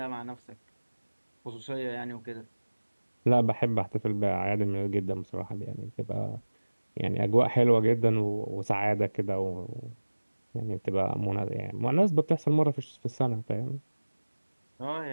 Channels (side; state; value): both; inverted; correlation -1.00